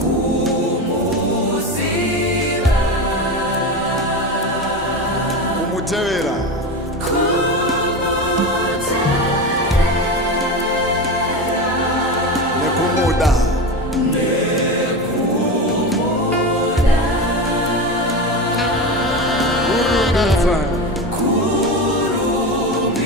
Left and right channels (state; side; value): normal; both; correlation 0.22